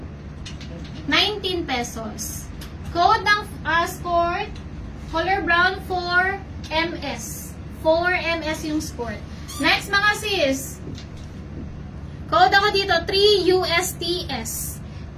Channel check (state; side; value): identical; both; correlation 1.00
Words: pesos. Code ng skirt, color brown 4 MS. 4 MS yung skirt. Next, mga sis. Code ako dito, 3 USTS.